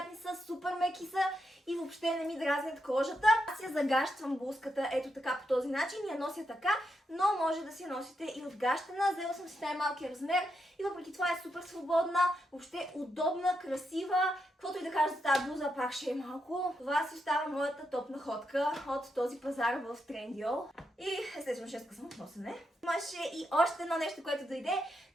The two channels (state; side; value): normal; both; correlation 0.83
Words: са, супер меки са и въобще не ми дразнят кожата. Аз я загащвам блузката ето така по този начин, я нося така, но може да си я носите и отгащена. Взела съм си най-малкия размер и въпреки това е супер свободна, въобще удобна, красива. Каквото и да кажа за тази блуза, пак ще е малко. Това си остава моята топ находка от този пазар в Trendyol. И естествено 6 съм от носене. Имаше и още едно нещо, което дойде.